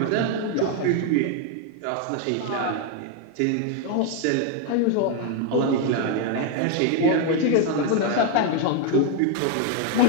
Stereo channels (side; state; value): both; different; correlation 0.01